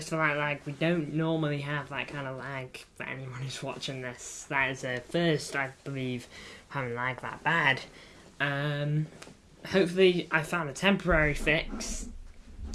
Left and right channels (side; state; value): both; identical; correlation 1.00